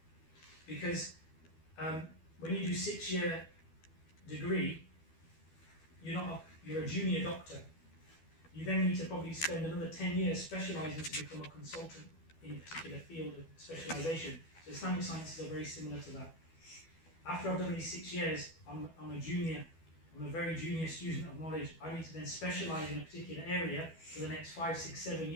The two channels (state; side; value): late; right; 12 ms